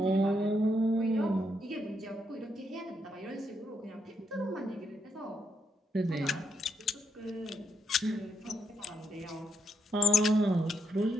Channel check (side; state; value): both; normal; correlation 0.78